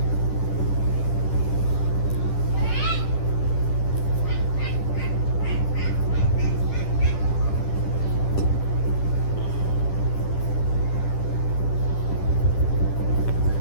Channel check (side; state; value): right; late; 10 ms